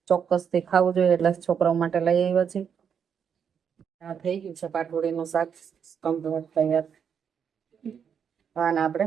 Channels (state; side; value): quieter; left; 7.5 dB